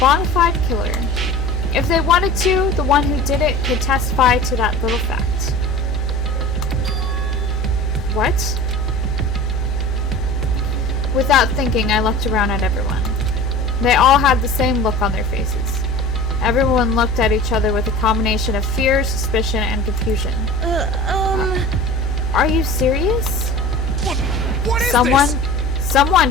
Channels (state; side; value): normal; both; correlation 0.38